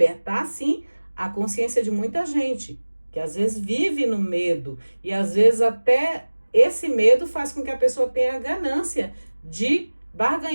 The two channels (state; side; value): inverted; both; correlation -1.00